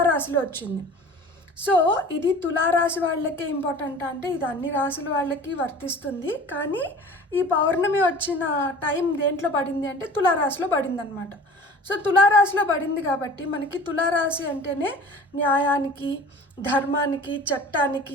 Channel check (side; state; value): both; normal; correlation 0.42